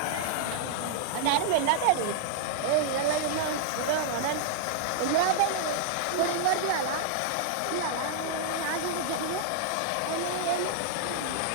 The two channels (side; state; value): both; different; correlation -0.02